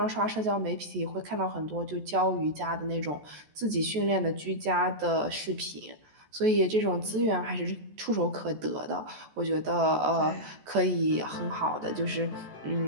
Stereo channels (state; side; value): late; left; 14 ms